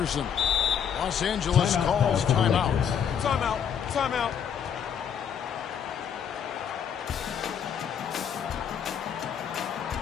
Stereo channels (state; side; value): quieter; right; 8.0 dB